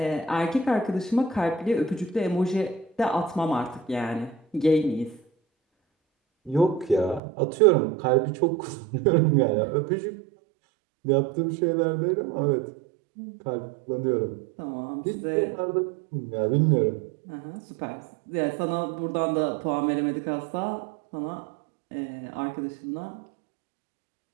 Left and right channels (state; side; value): drops out; left; at 7.2 s